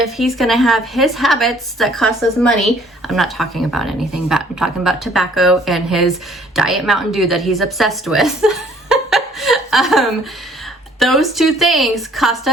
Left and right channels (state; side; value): normal; both; correlation 0.58